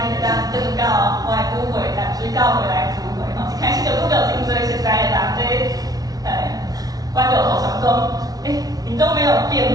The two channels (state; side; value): late; left; 0.18 ms